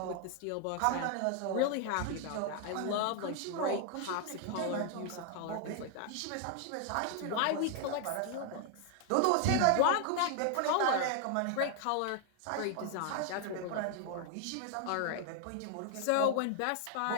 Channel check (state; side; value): different; both; correlation 0.00